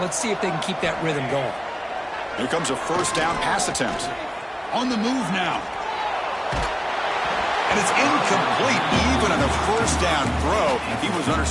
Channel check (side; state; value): both; identical; correlation 1.00